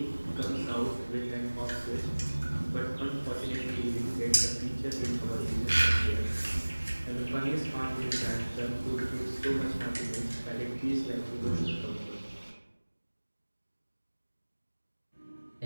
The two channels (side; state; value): both; inverted; correlation -1.00